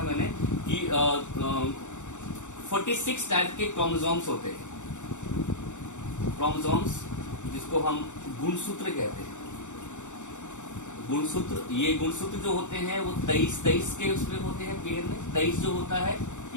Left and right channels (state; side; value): late; right; 0.85 ms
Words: मैंने कि 46 टाइप के क्रोमोसोम्स होते हैं, क्रोमोसोम्स जिसको हम गुणसूत्र कहते हैं। गुणसूत्र, ये गुणसूत्र जो होते हैं वो 23 के उसमें होते हैं पेयर में। 23 जो होता है